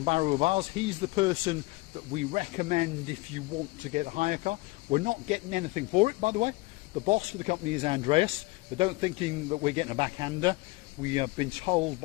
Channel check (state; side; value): quieter; right; 22.7 dB